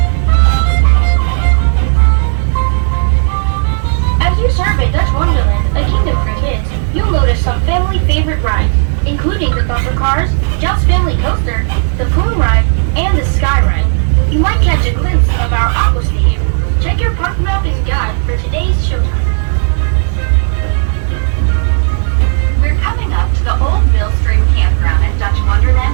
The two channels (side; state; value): left; silent; digital silence